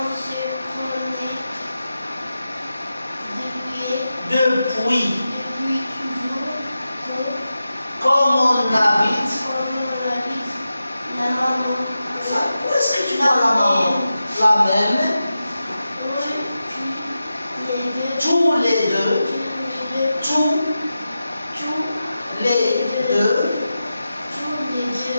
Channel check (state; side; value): inverted; both; correlation -0.92